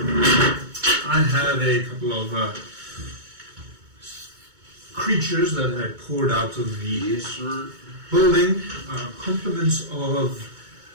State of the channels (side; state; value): left; late; 2.2 ms